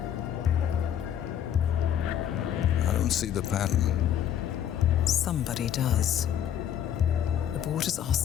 I don't see the pattern. Somebody does. The board has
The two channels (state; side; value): quieter; right; 10.0 dB